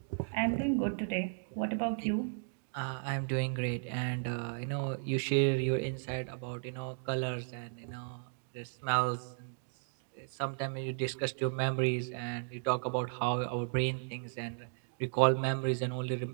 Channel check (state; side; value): silent; left; digital silence